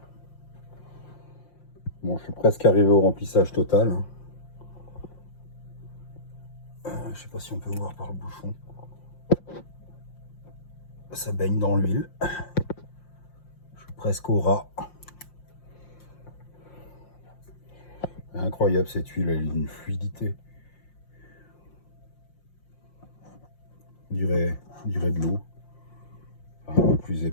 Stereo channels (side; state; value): right; late; 5.7 ms